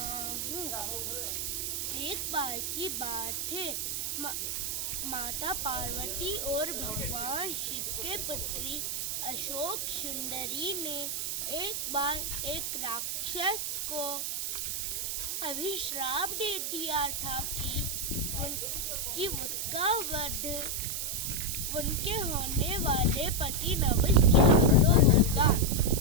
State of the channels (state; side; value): noise; right; hiss, 1 dB below the sound